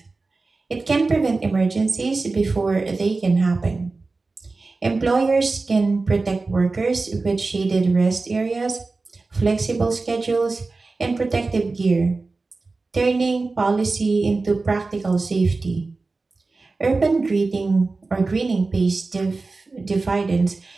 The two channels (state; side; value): quieter; left; 3.7 dB